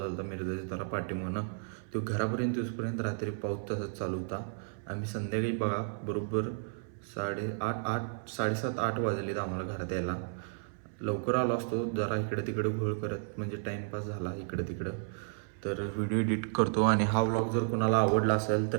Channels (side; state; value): left; silent; 56 dB below the other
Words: होता. मिरजाच्या जरा पाठीमागनं तो घरापर्यंत येऊसपर्यंत रात्री पाऊस तसाच चालू होता. आम्ही संध्याकाळी बघा बरोबर साडेसात 8 वाजलेत आम्हाला घरात यायला. लवकर आलो असतो, जरा इकडे तिकडे घोळ करत, म्हणजे टाईमपास झाला इकडं तिकडं. तर व्हिडिओ एडिट करतो. आणि हा व्लॉग जर कोणाला आवडला असेल